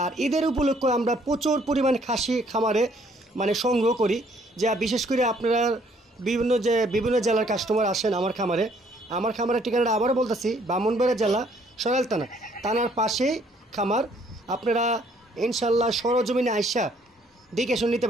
আর ঈদের উপলক্ষে আমরা প্রচুর পরিমাণ খাসি খামারে সংগ্রহ করি, যা বিশেষ করে আপনারা বিভিন্ন জেলার কাস্টমার আসেন আমার খামারের ঠিকানাটা আবারও বলতেছি, ব্রাহ্মণবাড়িয়া জেলা সরাইল থানার পাশেই খামার। আপনারা ইনশাল্লাহ সরজমিনে আইসা দেখে শুনে নিতে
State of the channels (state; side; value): normal; both; correlation 0.63